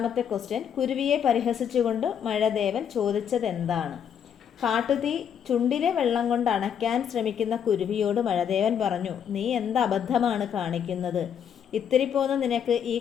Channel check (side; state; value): right; quieter; 8.3 dB